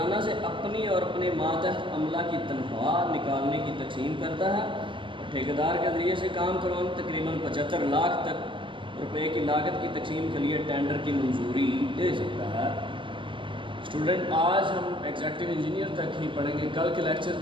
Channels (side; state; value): left; late; 0.24 ms